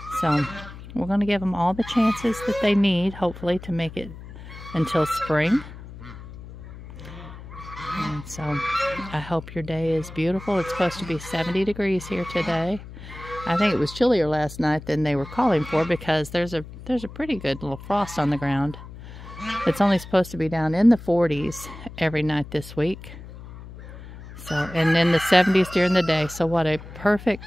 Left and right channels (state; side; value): noise; left; hum, 15 dB below the sound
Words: So we're going to give them all the chances that they need, hopefully, to make it until spring. And so I hope your day is beautiful. It's supposed to be 70 degrees here today. I think it was chillier last night than they were calling for because there's a pretty good little frost on the ground. It's only supposed to be down in the 40s every night this week. So, and in the 70s during the day. So what a perfect